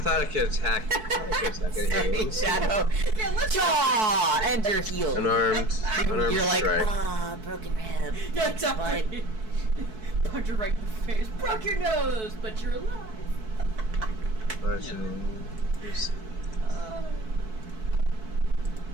thought I could attack. Sorry, Shadow. Jaw and your heel. Unarmed You're like, strike. broken rib. Yeah, exactly. Punch her right in the face. Broke your nose, but you're alive. Bludgeoning. Oh.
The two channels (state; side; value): late; left; 4.6 ms